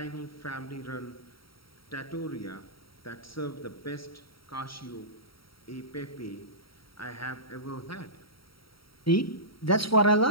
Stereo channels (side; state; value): right; late; 0.75 ms